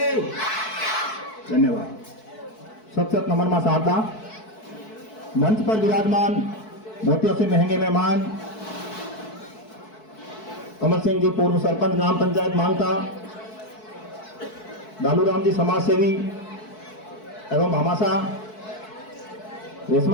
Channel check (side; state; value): right; late; 4.6 ms